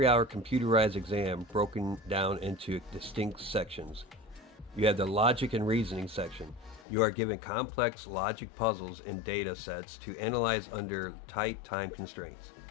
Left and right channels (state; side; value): drops out; right; at 6.9 s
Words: computerized exam broken down into distinct sections. You have the logic and reasoning section. You are given complex logic puzzles and data sets to analyze under tight time constraints.